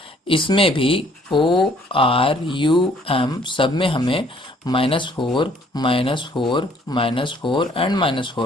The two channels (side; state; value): both; normal; correlation 0.61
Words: इसमें भी ORUM सब में हमें -4 -4 एंड